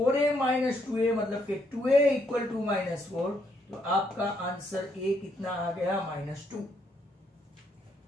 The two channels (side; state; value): both; normal; correlation 0.74